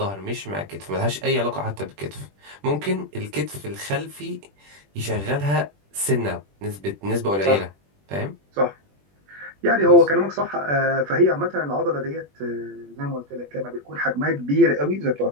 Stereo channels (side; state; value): left; late; 21 ms